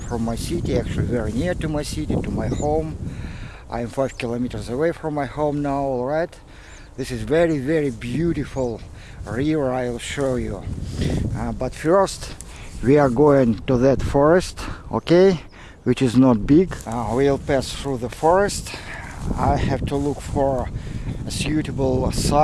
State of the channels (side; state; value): both; identical; correlation 1.00